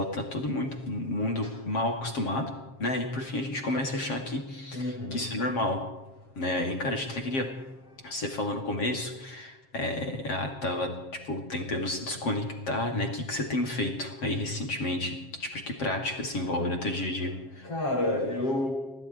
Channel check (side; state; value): right; late; 7.5 ms